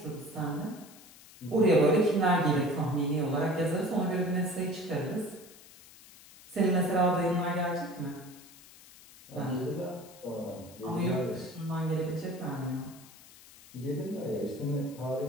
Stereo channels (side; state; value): left; noise; hiss, 21 dB below the sound